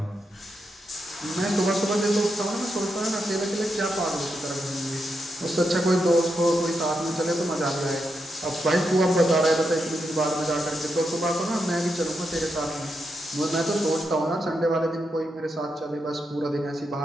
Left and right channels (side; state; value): both; normal; correlation 0.84